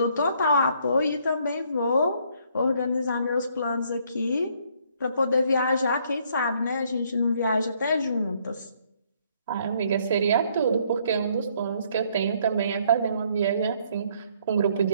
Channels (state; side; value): inverted; both; correlation -0.66